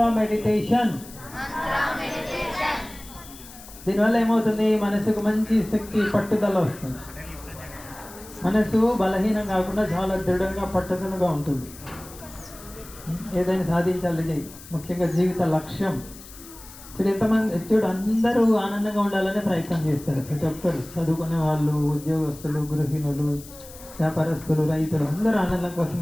మెడిటేషన్. దీనివల్ల ఏమవుతుంది? మనసుకు మంచి శక్తి, పట్టుదల వస్తుంది. మనసు బలహీనం కాకుండా చాలా దృఢంగా, పట్టుదలగా ఉంటుంది. ఏదైనా సాధించాలి, ముఖ్యంగా జీవిత లక్ష్యం. చూడు అందరూ ఆనందంగా ఉండాలనే ప్రయత్నం చేస్తారు. ప్రతి ఒక్కరు, చదువుకునే వాళ్ళు, ఉద్యోగస్తులు, గృహిణులు, వ్యాపారస్తులు, రైతులు, అందరూ ఆనందం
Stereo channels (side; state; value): left; noise; hiss, 18 dB below the sound